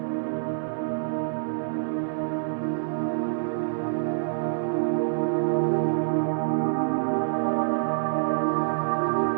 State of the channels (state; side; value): silent; left; digital silence